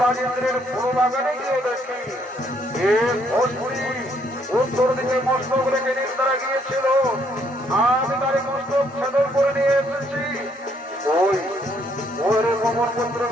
ইন্দ্রের ফুল বাগানে গিয়ে দেখি ভোজপুরি উত্তর দিকে মস্তক রেখে নিদ্রা গিয়েছিল। আমি তার মস্তক ছেদন করে নিয়ে এসেছি। ওই ওরে পবন পুত্র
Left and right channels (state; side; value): normal; both; correlation 0.69